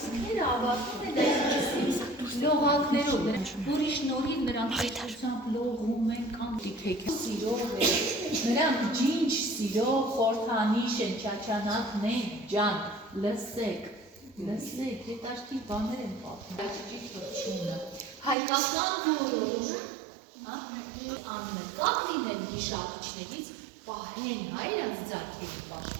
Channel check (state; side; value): drops out; left; at 18.4 s